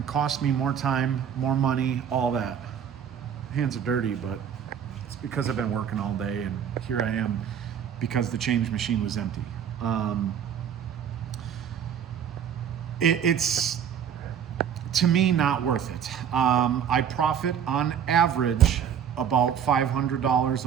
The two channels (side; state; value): left; quieter; 8.5 dB